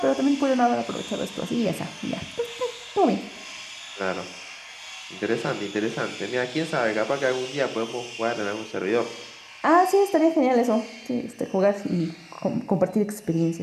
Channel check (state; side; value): identical; both; correlation 1.00